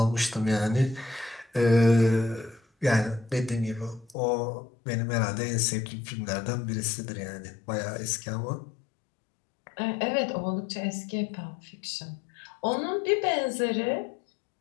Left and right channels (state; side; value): drops out; right; at 4.2 s